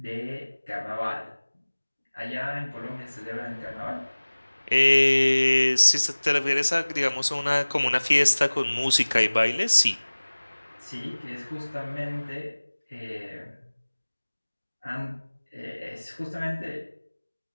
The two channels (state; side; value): inverted; both; correlation -1.00